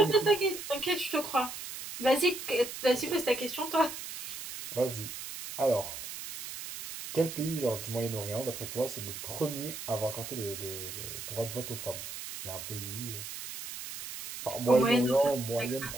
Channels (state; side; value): noise; right; hiss, 9 dB below the sound